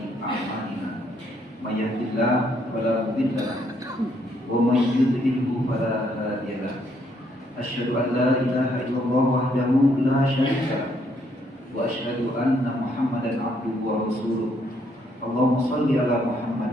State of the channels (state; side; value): normal; both; correlation 0.71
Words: a'malina. May yahdihillahu fala mudilla lahu wa may yudlilhu fala hadiya lahu. Asyhadu an la ilaha illallah wahdahu la syarika lahu wa asyhadu anna Muhammadan abduhu wa rasuluh. Allahumma shalli ala